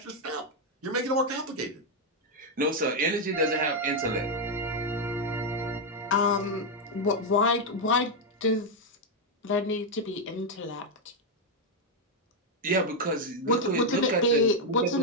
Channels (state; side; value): normal; both; correlation 0.02